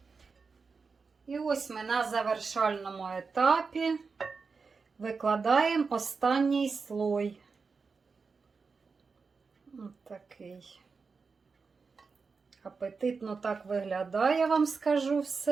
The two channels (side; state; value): left; quieter; 4.8 dB